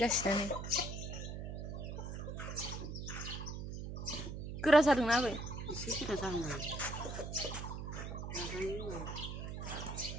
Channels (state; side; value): noise; right; hum, 6 dB below the sound